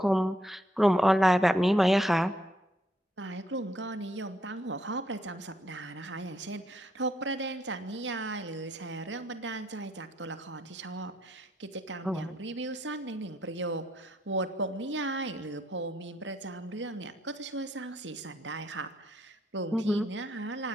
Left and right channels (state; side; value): normal; both; correlation 0.73